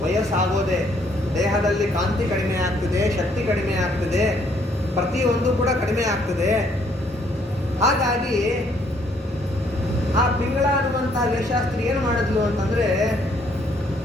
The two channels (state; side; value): normal; both; correlation 0.67